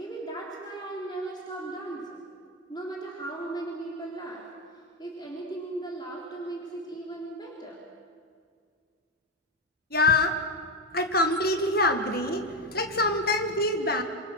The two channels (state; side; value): normal; both; correlation 0.11